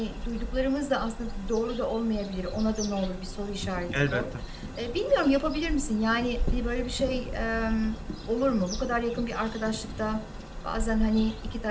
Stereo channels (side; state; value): both; identical; correlation 1.00